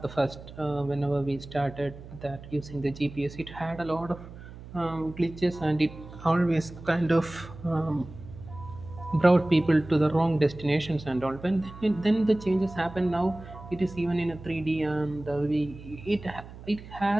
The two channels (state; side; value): noise; right; hum, 15 dB below the sound